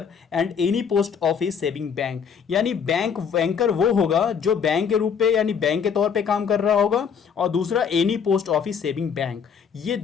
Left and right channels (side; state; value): right; quieter; 6.9 dB